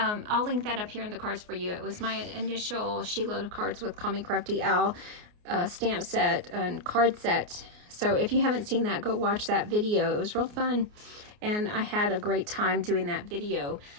link that up here in the cards for you. It was my initial sheetload of cards with Call Me Crafty Al stamp set and card set. So if you haven't seen that, go watch that video. It was real fun. And I had a great time doing that video,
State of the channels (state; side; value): late; left; 29 ms